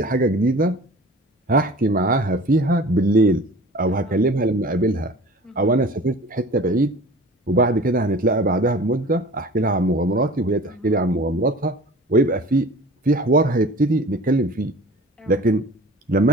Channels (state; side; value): normal; both; correlation 0.42